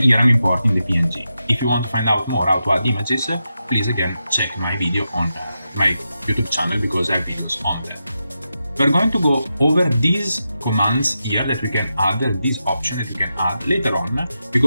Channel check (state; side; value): inverted; both; correlation -0.88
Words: here I'm importing the PNG. If you want to find out more how to add images, please again check my video on my YouTube channel because I have videos on that. We're going to go over these commands here that we can add, this option that we can add later on,